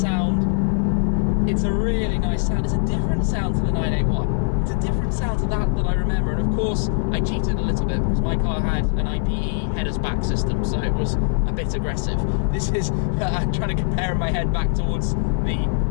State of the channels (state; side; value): silent; right; 64 dB below the other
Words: It's a really nice sound. It's a different sound to the 981. It's a different sound to that I remember, and of course I cheated a little bit because my car had an IPE headers back system, so it was a bit aggressive. This is I'm trying to compare my head back towards